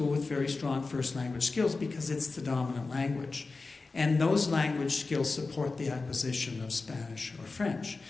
with very strong first language skills because it's the dominant language. And those language skills support the acquisition of Spanish or French.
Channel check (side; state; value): right; quieter; 3.8 dB